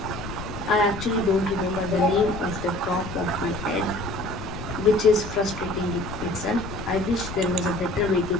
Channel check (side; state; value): left; noise; rumble, 10 dB below the sound